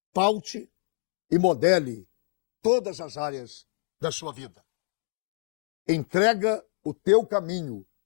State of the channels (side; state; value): right; silent; digital silence